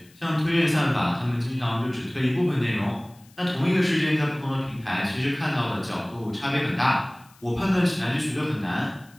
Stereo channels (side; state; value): left; noise; hiss, 28 dB below the sound